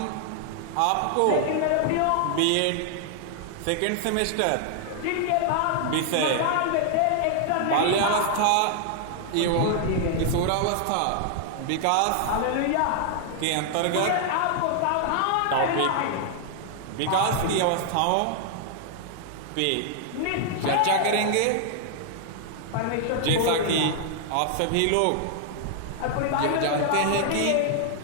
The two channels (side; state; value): both; different; correlation 0.00